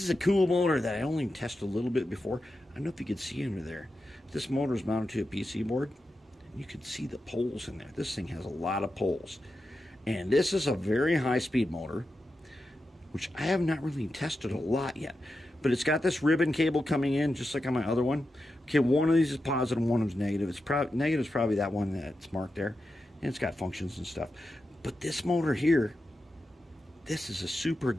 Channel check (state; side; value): normal; both; correlation 0.89